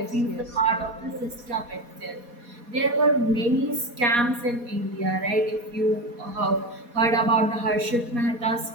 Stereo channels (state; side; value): late; left; 4.2 ms